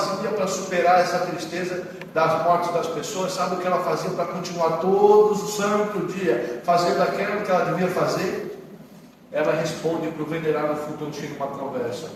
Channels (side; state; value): both; identical; correlation 1.00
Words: para superar essa tristeza das mortes das pessoas? Sabe o que ela fazia para continuar todos os santos dia fazendo aquilo que ela devia fazer? Ela responde para o venerável Fulton Sheen numa conversa.